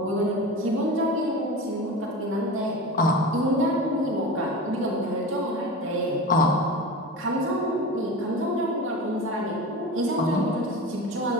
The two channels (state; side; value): normal; both; correlation 0.30